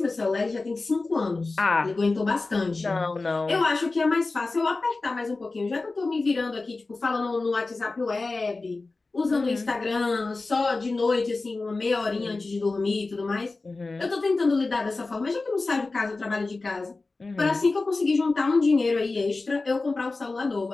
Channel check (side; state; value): right; quieter; 3.6 dB